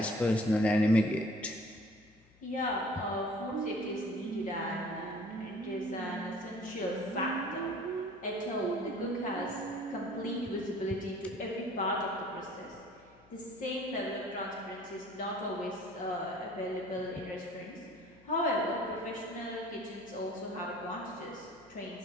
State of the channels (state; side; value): noise; left; hum, 28 dB below the sound